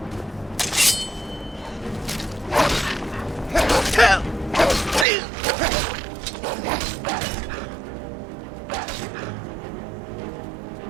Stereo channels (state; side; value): drops out; left; at 5.1 s